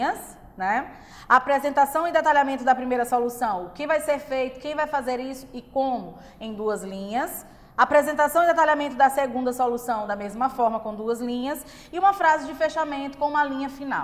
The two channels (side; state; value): both; identical; correlation 1.00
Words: né? A apresentação e detalhamento da primeira solução, o que vai ser feito, quem vai fazer isso e como, em 2 linhas. Apresentação e detalhamento da segunda solução, da mesma forma, com 2 linhas. E uma frase de fechamento com uma linha